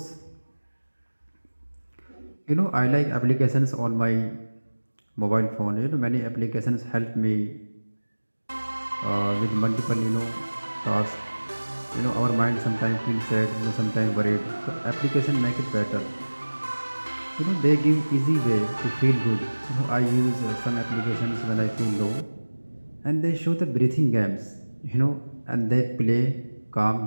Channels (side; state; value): both; inverted; correlation -1.00